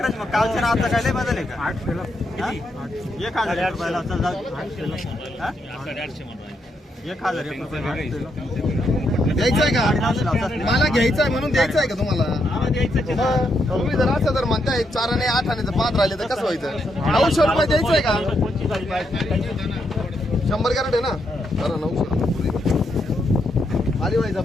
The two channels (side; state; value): both; normal; correlation 0.79